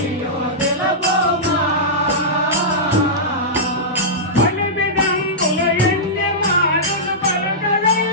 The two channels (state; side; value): normal; both; correlation -0.14